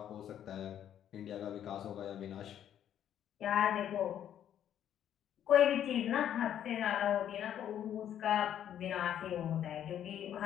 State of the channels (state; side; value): quieter; right; 10.2 dB